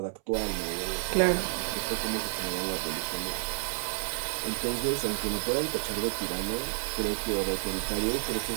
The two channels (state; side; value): silent; left; 58 dB below the other